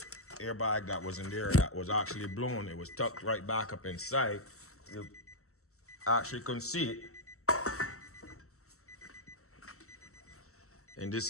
airbag that was in there that was actually blown. It was tucked right back up inside. You actually couldn't see it. And this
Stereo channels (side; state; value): right; late; 0.63 ms